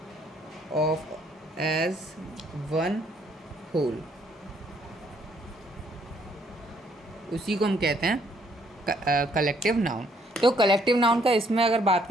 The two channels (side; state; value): both; normal; correlation 0.67